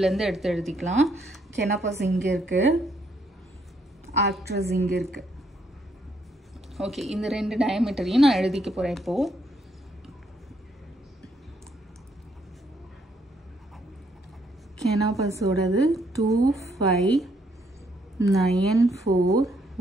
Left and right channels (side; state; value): both; normal; correlation 0.72